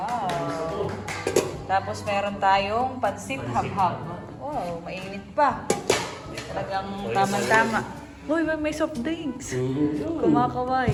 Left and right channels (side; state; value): both; identical; correlation 1.00